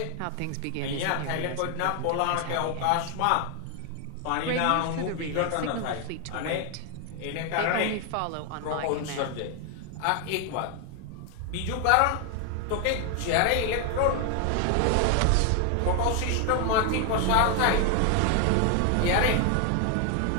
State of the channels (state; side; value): different; both; correlation 0.00